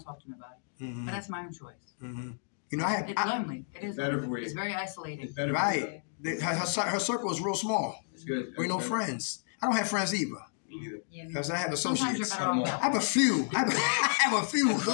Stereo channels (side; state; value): right; silent; digital silence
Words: to nobody. Mm-hmm. But that's my own choice. Mm-hmm. You know, it's lonely. It is better lonely. for you. It's very isolating. Right. Her circle is real small. It's good. We no friends. I don't have friends either. Me neither. Because I have associates. Sometimes you're I have a few. I have a few.